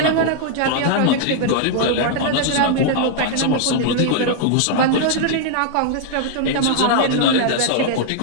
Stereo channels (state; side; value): different; both; correlation 0.00